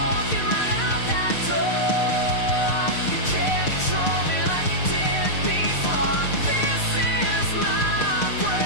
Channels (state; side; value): late; right; 6.6 ms